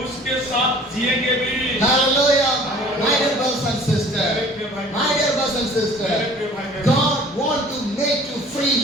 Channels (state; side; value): normal; both; correlation 0.49